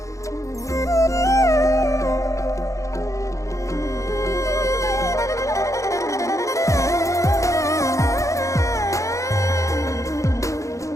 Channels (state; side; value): late; right; 0.15 ms